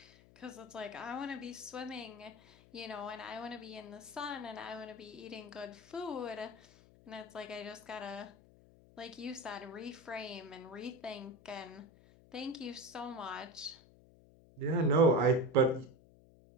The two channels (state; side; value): noise; left; hum, 24 dB below the sound